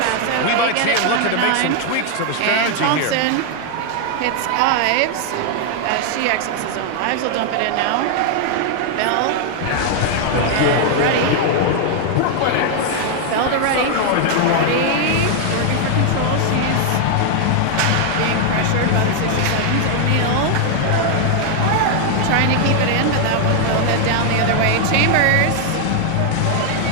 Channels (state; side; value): different; both; correlation 0.00